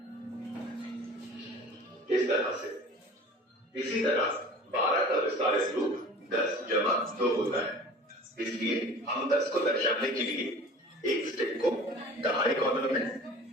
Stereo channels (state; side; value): normal; both; correlation 0.43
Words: इस तरह से इसी तरह 12 का विस्तारित रूप 10 जमा 2 होता है। इसलिए हम 10 को दर्शाने के लिए एक स्टिक को दहाई कॉलम में